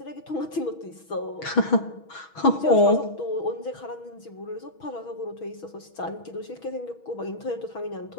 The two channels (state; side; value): late; right; 6.2 ms